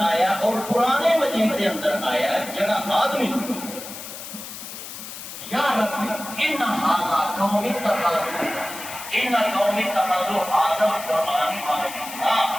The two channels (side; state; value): left; noise; hiss, 11 dB below the sound